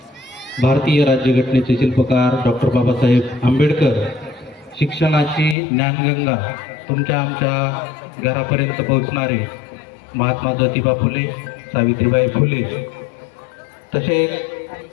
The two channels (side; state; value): right; drops out; at 5.6 s